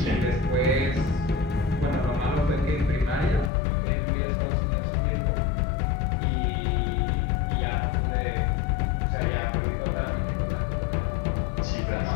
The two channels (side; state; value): right; drops out; at 3.5 s